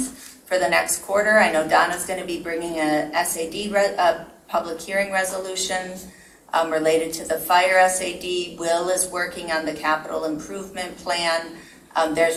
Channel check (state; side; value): identical; both; correlation 1.00